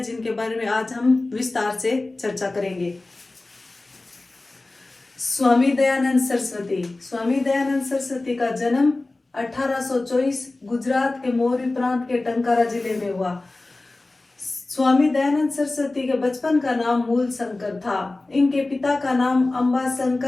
जिनके बारे में आज हम विस्तार से चर्चा करेंगे। स्वामी दयानंद सरस्वती का जन्म 1824 गुजरात के मोरबी प्रांत के टंकारा जिले में हुआ। स्वामी दयानंद सरस्वती के बचपन का नाम मूल शंकर था। इनके पिता का नाम अंबा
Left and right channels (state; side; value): quieter; right; 3.1 dB